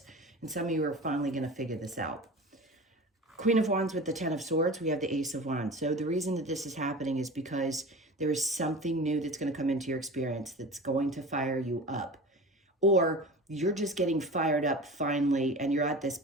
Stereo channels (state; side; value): normal; both; correlation 0.34